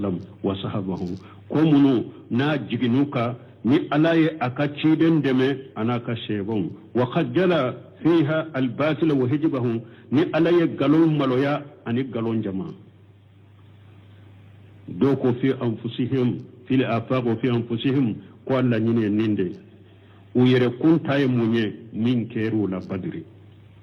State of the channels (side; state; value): both; identical; correlation 1.00